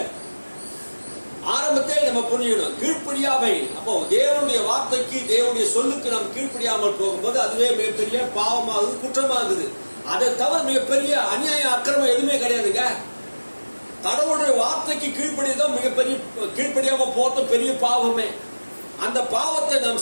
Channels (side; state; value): both; inverted; correlation -1.00